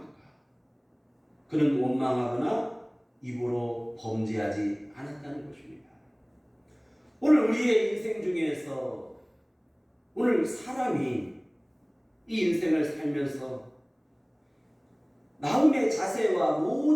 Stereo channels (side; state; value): both; identical; correlation 1.00